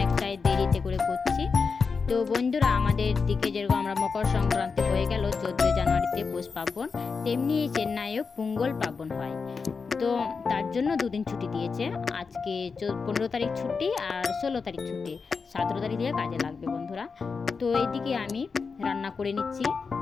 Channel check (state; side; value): quieter; right; 5.0 dB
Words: দেরিতে করে করছি। তো বন্ধুরা, আমাদের দিকে যেরকম আমরা মকর সংক্রান্তি হয়ে গেল 14 জানুয়ারিতে পৌষ পার্বণ, তেমনি চেন্নাইও পোঙ্গল পার্বণ হয়। তো তার জন্য দুদিন ছুটি দিয়েছে। আজকে 15 তারিখ ছুটি আর 16 তারিখ ছুটি, 17 তারিখ দিয়ে কাজে লাগবে বন্ধুরা। তো এইদিকে আমি রান্না করে নিচ্ছি,